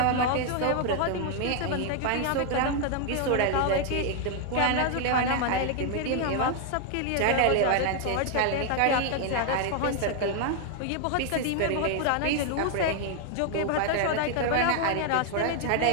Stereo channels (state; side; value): different; both; correlation 0.00